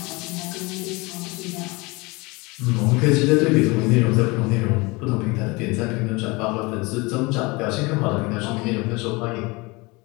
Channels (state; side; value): quieter; right; 25.3 dB